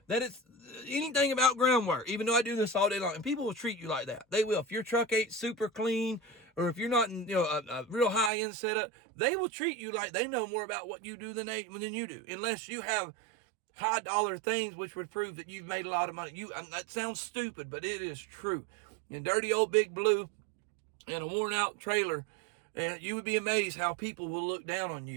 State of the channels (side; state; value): left; drops out; at 8.3 s